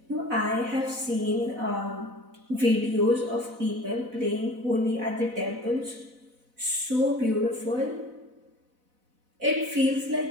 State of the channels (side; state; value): left; late; 4.0 ms